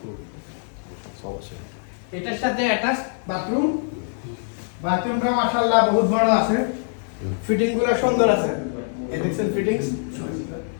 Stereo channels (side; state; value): right; silent; digital silence